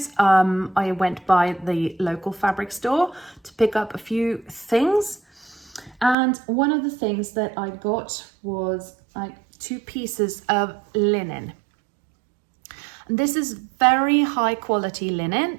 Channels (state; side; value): drops out; left; at 6.2 s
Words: I went by the local fabric store to pick up a few things. And one of the things that I got was like 2 pieces of linen. And this is very high quality